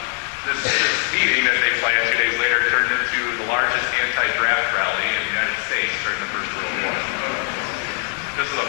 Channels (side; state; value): right; quieter; 35.7 dB